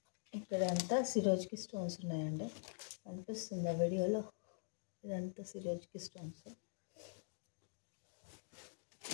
ఇక్కడంతా సిరోజ్కి స్టోన్స్ ఉన్నాయండి. కనిపిస్తుంది ఆ వీడియోలో. ఇదంతా సిరోజ్కి స్టోన్స్.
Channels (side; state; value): right; silent; digital silence